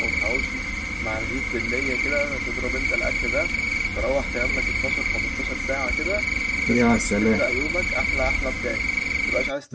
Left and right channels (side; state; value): both; identical; correlation 1.00